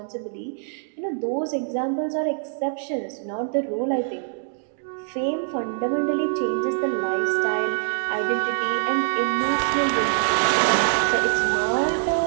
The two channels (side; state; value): left; silent; digital silence